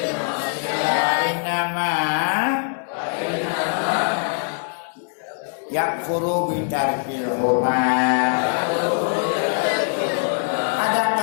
ma'siyah innama yakfuru bitarkil hurmat.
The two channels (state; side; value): silent; right; digital silence